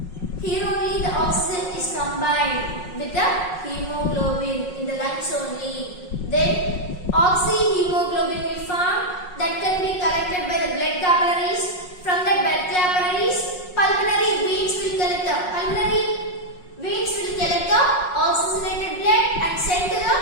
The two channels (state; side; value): late; right; 5.5 ms